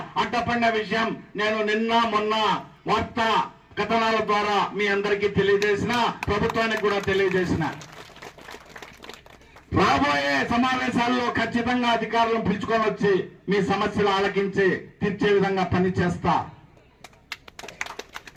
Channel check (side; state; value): both; identical; correlation 1.00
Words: అడ్డపడిన విషయం నేను నిన్న మొన్న వార్తా కథనాల ద్వారా మీ అందరికీ తెలియజేసిన, ప్రభుత్వానికి కూడా తెలియజేసిన. రాబోయే సమావేశాల్లో ఖచ్చితంగా అధికారులను పిలుచుకొని వచ్చి మీ సమస్యలు ఆలకించి తీర్చే విధంగా పనిచేస్తా.